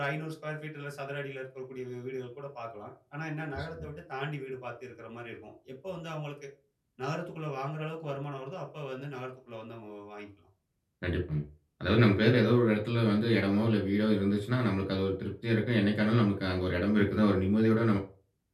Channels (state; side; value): identical; both; correlation 1.00